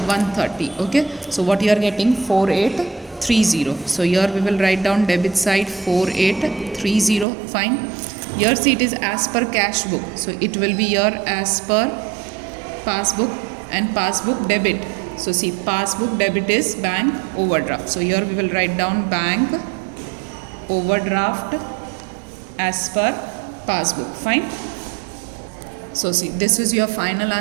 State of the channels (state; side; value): drops out; left; at 7.2 s